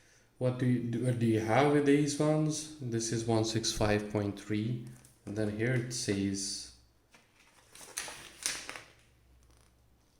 what do you have with these ones? This is 165.3, and then here it says.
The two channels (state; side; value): identical; both; correlation 1.00